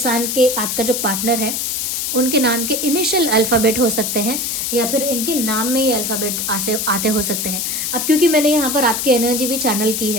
के, आपका जो पार्टनर है, उनके नाम के इनिशियल अल्फ़ाबेट हो सकते हैं, या फिर इनके नाम में ये अल्फ़ाबेट आते हो सकते हैं। अब क्योंकि मैंने यहाँ पर आपकी एनर्जी भी चैनल की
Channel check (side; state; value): left; noise; hiss, 1 dB below the sound